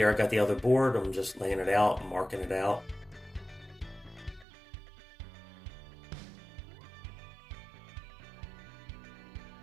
I got the other board, I'm just laying it out, marking it out.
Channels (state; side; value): drops out; left; at 4.5 s